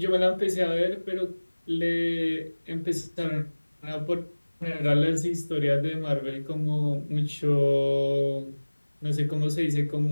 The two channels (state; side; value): inverted; both; correlation -1.00